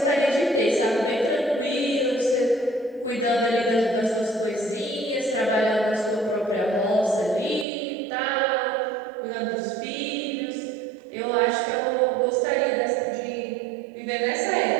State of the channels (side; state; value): left; drops out; at 7.7 s